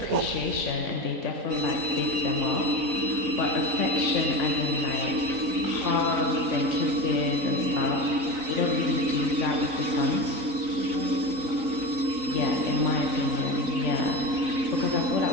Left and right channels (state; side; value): late; left; 3.9 ms